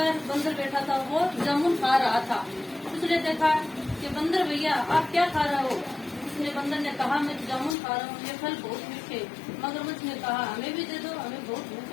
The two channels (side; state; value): right; drops out; at 7.8 s